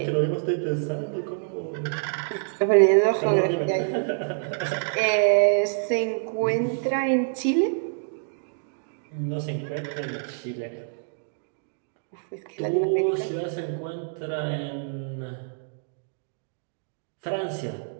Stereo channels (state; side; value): silent; left; digital silence